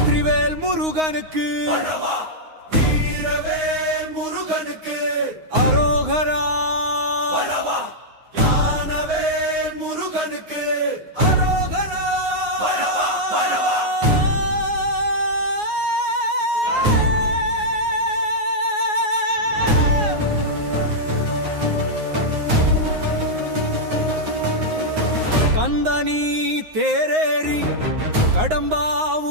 முருகனுக்கு வீரவேல் முருகனுக்கு அரோகரா ஞானவேல் முருகனுக்கு அரோகரா கந்தனி தேரேறி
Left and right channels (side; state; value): left; late; 9.6 ms